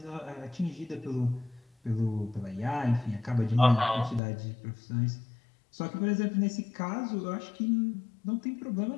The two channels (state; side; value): drops out; right; at 4.2 s